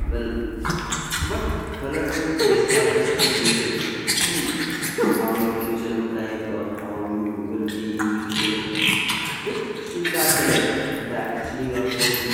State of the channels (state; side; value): identical; both; correlation 1.00